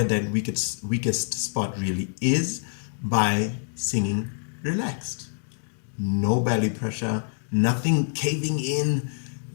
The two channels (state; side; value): silent; right; digital silence